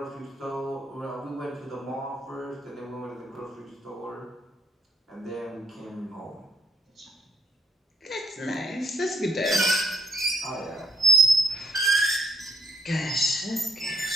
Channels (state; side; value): normal; both; correlation 0.66